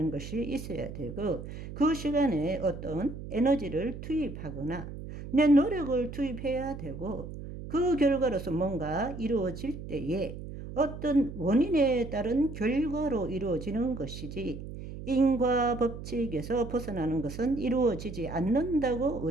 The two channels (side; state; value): right; noise; hum, 10 dB below the sound